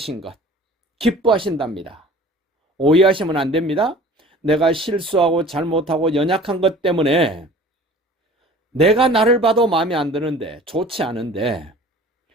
것 기뻐하신답니다. 오해하시면 안 됩니다. 내가 실수하고 잘못하고 연약한 것 때문에 내가 나를 봐도 마음에 안 드는데, 좋지 않은데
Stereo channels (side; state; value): both; normal; correlation 0.45